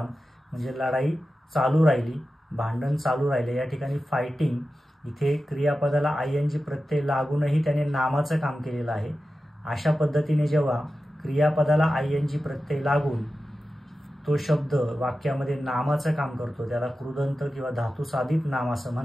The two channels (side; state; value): both; normal; correlation 0.93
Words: म्हणजे लढाई चालू राहिली, भांडण चालू राहिले. या ठिकाणी फायटिंग इथे क्रियापदाला ING प्रत्यय लागूनही त्याने नामाचं काम केलेलं आहे. अशा पद्धतीने जेव्हा क्रियापदाला ING प्रत्यय लागून तो शब्द वाक्यामध्ये नामाचं काम करतो त्याला कृदंत किंवा धातुसाधित नाम असं